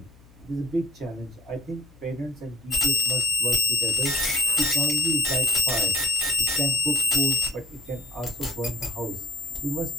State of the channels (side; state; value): left; noise; hum, 26 dB below the sound